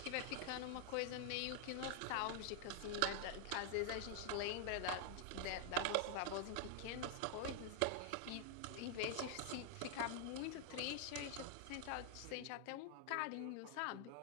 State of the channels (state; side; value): different; both; correlation 0.00